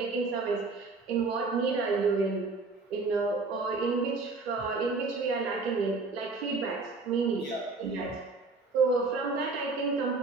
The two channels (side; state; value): left; quieter; 3.8 dB